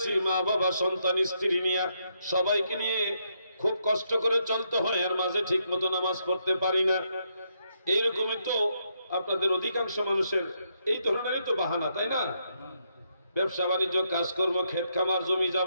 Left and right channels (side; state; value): both; inverted; correlation -0.77